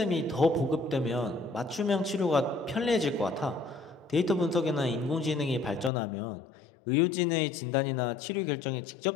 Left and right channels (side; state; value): right; drops out; at 5.9 s